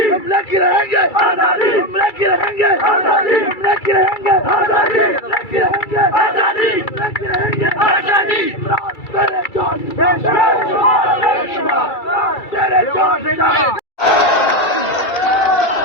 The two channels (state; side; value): late; right; 2.3 ms